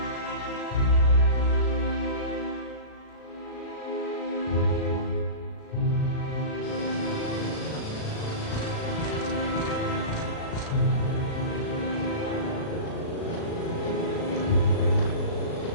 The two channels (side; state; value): right; late; 36 ms